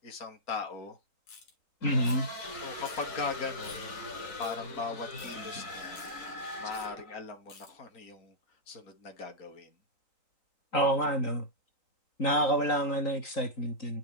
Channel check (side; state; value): right; late; 3.9 ms